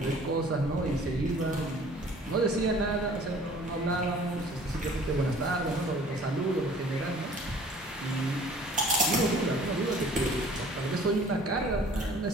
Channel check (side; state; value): both; normal; correlation 0.51